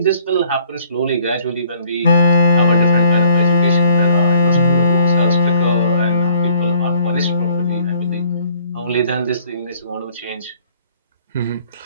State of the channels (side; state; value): both; inverted; correlation -0.60